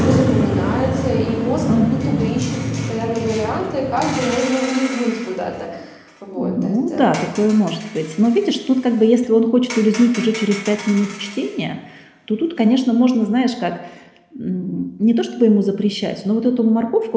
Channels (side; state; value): both; identical; correlation 1.00